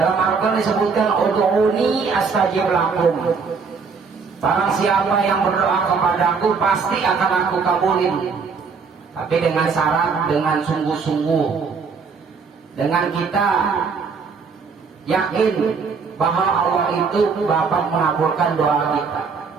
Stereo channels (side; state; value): left; quieter; 5.3 dB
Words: Al-Quran disebutkan ud'uni astajib lakum. Barang siapa yang berdoa kepadaku pasti akan aku kabulin. Tapi dengan syarat, dengan sungguh-sungguh, dengan kita yakin bahwa Allah itu dapat mengabulkan doa kita.